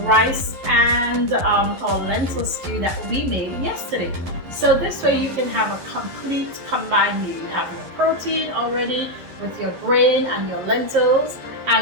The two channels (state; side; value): late; left; 11 ms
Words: rice and our lentil stew that we made yesterday. So this way you can have a complete combined meal. You have your protein already with your grain and your lentils,